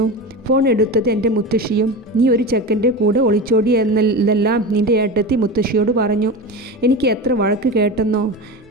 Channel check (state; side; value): normal; both; correlation 0.25